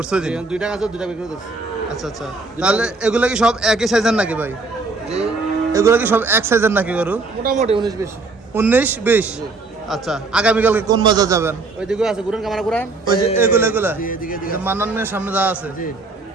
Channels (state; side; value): quieter; left; 3.7 dB